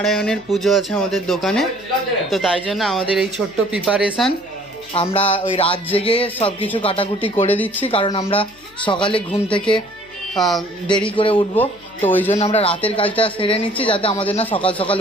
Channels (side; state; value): left; noise; hum, 27 dB below the sound